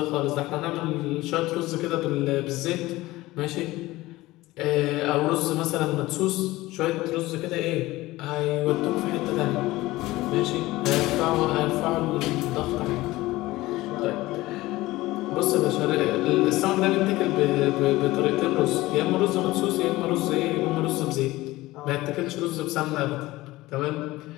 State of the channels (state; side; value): quieter; right; 18.6 dB